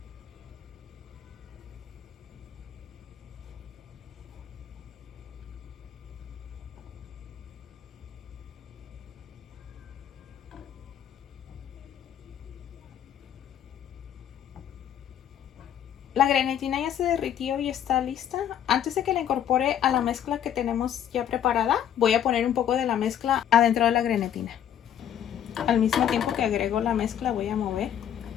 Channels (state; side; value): quieter; right; 9.8 dB